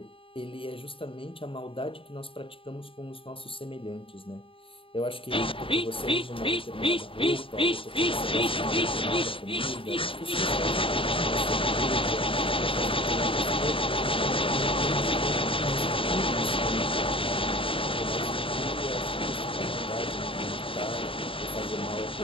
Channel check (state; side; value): late; right; 0.26 ms